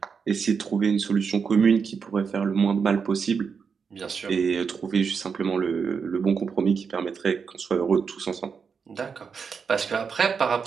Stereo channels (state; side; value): quieter; left; 5.9 dB